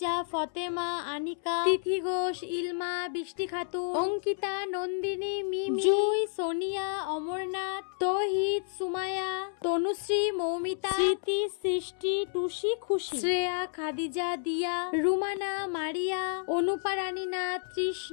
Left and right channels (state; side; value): silent; right; 58 dB below the other